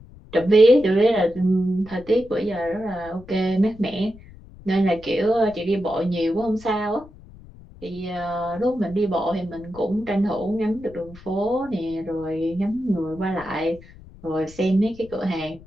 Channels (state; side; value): noise; left; rumble, 20 dB below the sound